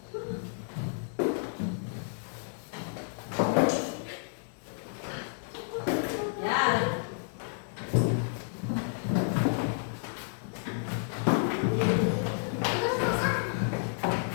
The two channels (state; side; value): silent; right; digital silence